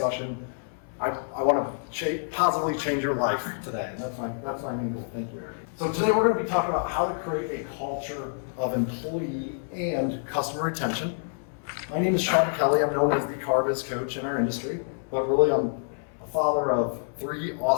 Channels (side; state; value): right; silent; 60 dB below the other